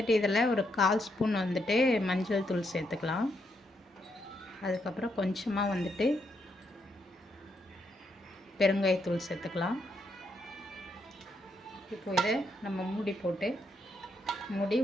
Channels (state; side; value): normal; both; correlation 0.78